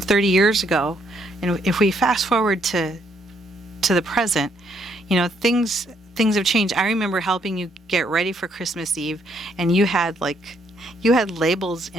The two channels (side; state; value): both; normal; correlation 0.71